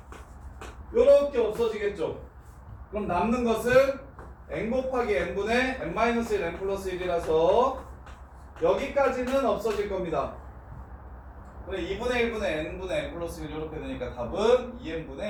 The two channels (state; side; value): identical; both; correlation 1.00